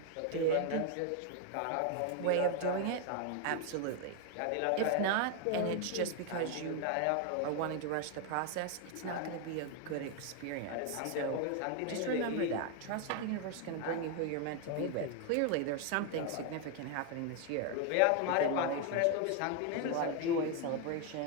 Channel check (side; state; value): both; different; correlation 0.01